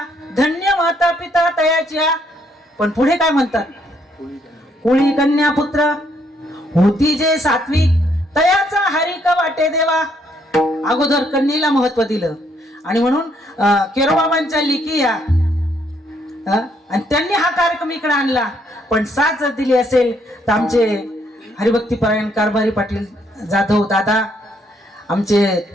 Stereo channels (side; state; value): both; normal; correlation 0.71